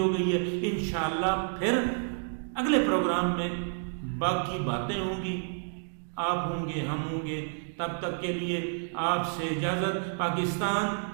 گئی ہے، انشاءاللہ پھر اگلے پروگرام میں باقی باتیں ہوں گی، آپ ہوں گے، ہم ہوں گے. تب تک کے لیے آپ سے اجازت. پاکستان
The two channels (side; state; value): left; silent; digital silence